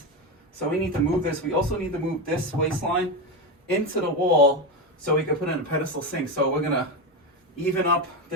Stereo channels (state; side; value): normal; both; correlation 0.14